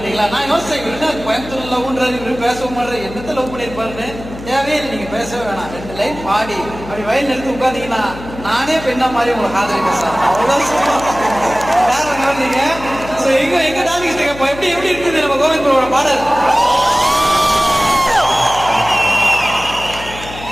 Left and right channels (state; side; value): noise; left; hum, 13 dB below the sound